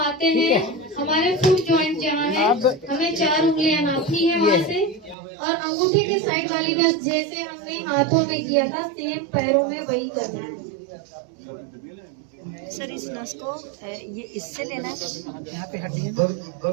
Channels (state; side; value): drops out; left; at 5.2 s